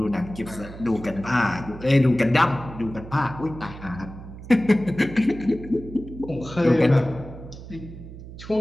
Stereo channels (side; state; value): right; noise; hum, 14 dB below the sound